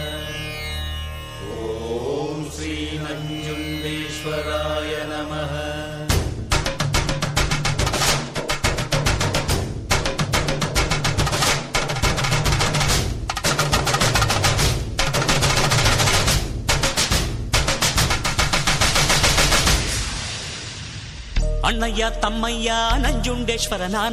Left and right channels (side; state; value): both; identical; correlation 1.00